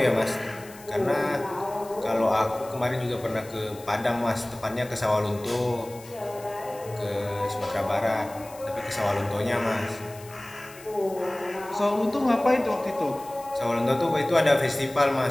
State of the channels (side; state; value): left; noise; hiss, 20 dB below the sound